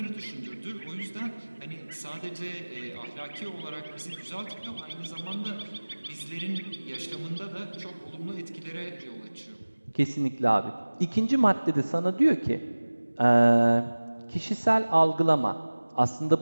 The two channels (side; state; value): both; inverted; correlation -1.00